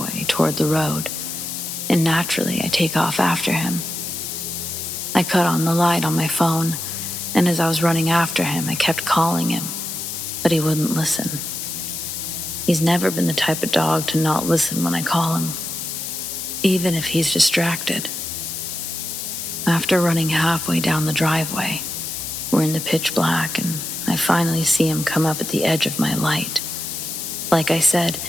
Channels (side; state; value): left; noise; hiss, 5 dB below the sound